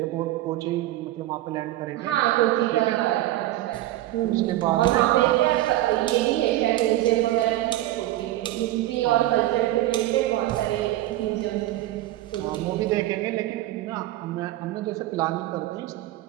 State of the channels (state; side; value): quieter; left; 15.3 dB